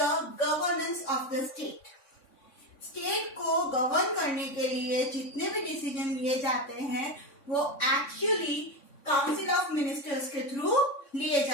the governance of the state. State को गवर्न करने के लिए जितने भी डिसीजन लिए जाते हैं वो एक्चुअली काउंसिल ऑफ मिनिस्टर्स के थ्रू लिए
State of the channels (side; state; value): right; late; 3.6 ms